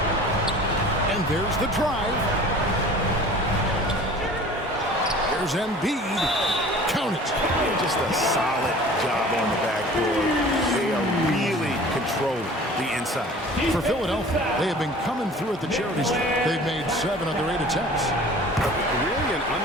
And there's the drive. There's Embiid. Count it. Just a solid job on the backboard. They are really controlling the inside. For Philadelphia, they have been coming through at the charity stripe. They've made 7 of their 8 attempts. Really an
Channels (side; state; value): both; normal; correlation 0.44